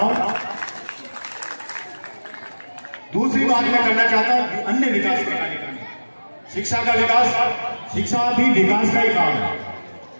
हूं। दूसरी बात मैं करना चाहता हूं, अन्य विकास के कार्यक्रम, शिक्षा का विकास, शिक्षा भी विकास का ही काम है।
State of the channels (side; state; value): both; inverted; correlation -1.00